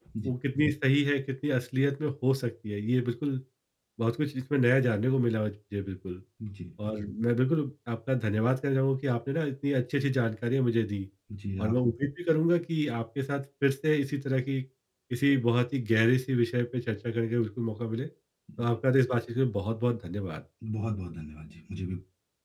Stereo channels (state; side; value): identical; both; correlation 1.00